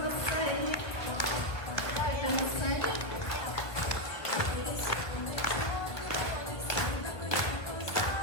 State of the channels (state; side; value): late; right; 1.5 ms